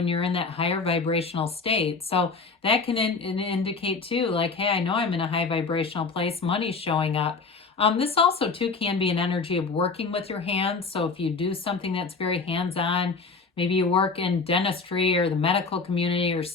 you're in that higher vibrational state. So that can indicate too, like, hey, I know I'm in a high vibrational place. Money's showing up. This also too can be an energy of working with your hands. So if you do something that's very hands-on, maybe you work in dentistry or the medical community or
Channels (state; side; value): quieter; right; 4.4 dB